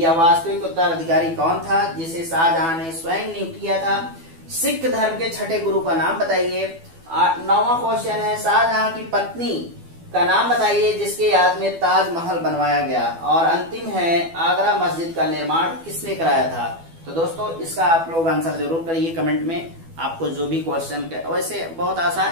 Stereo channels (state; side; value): late; left; 12 ms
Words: वास्तविक उत्तराधिकारी कौन था जिसे शाहजहां ने स्वयं नियुक्त किया था? सिख धर्म के छठे गुरु का नाम बताइए। 9वां क्वेश्चन है, शाहजहां की पत्नी का नाम बताइए जिसके याद में ताजमहल बनवाया गया। और अंतिम है, आगरा मस्जिद का निर्माण किसने कराया था? तो दोस्तों इसका आप लोग आंसर जरूर करिए कमेंट में। आपको जो भी क्वेश्चन, वैसे बहुत